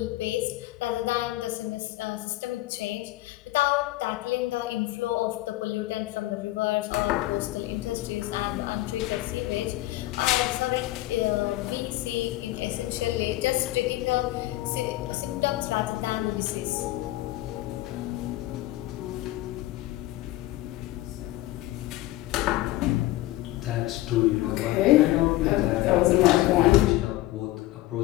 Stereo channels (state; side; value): quieter; right; 17.0 dB